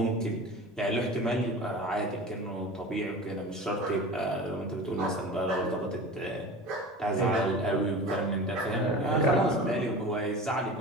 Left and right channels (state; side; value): normal; both; correlation 0.35